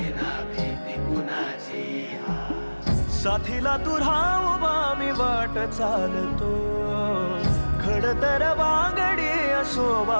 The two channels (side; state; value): both; inverted; correlation -1.00